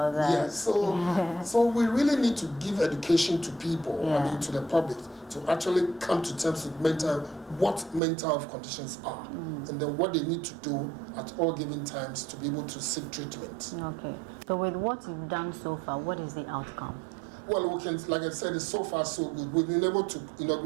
that. So we really need to give education to people, to the public, to actually come to terms with what mental health conditions are, and then what they need to do at all given times to be able to seek treatment. So with what you've done so far, what is the outcome? Well, we can, like I said, it's so far so good. We've been able to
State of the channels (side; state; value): left; drops out; at 8.0 s